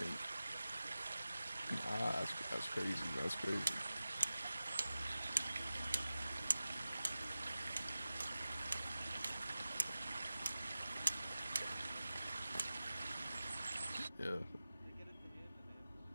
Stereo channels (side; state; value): both; inverted; correlation -0.95